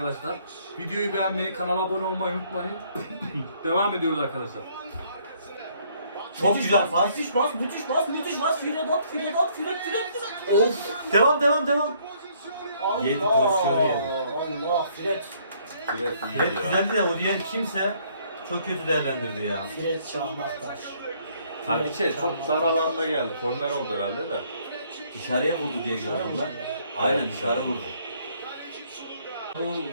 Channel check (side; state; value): both; inverted; correlation -0.65